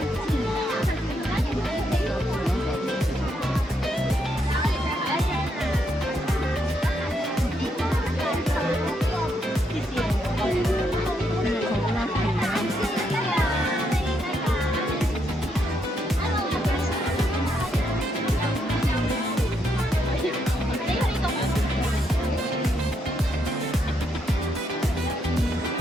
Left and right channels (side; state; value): both; normal; correlation 0.77